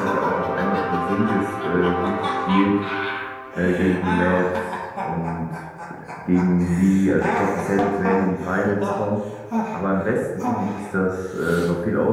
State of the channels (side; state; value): both; identical; correlation 1.00